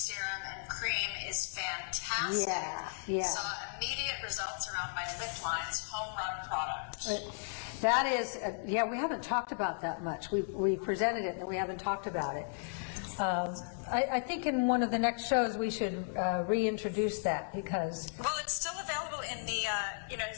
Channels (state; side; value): silent; right; digital silence